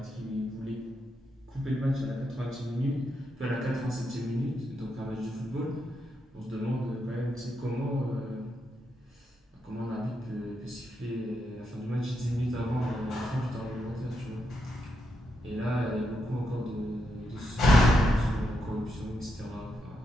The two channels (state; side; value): normal; both; correlation 0.83